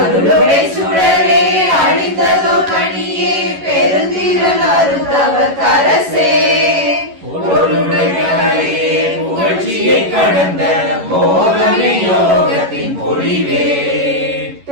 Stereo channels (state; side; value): late; left; 11 ms